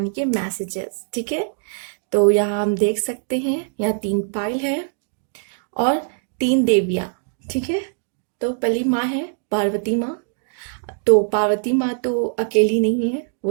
के मैसेजेस। ठीक है, तो यहाँ हम देख सकते हैं, यहाँ 3 पायल है और 3 देवियाँ। ठीक है, तो पहली माँ है पार्वती माँ। तो पार्वती माँ तो अकेली नहीं है,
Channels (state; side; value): silent; left; digital silence